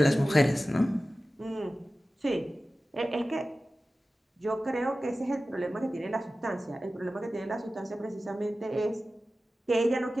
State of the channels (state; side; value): normal; both; correlation 0.95